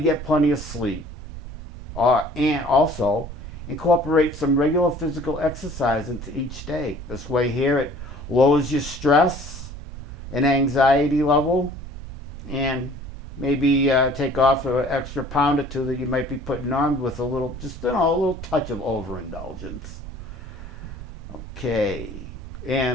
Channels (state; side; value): noise; right; rumble, 11 dB below the sound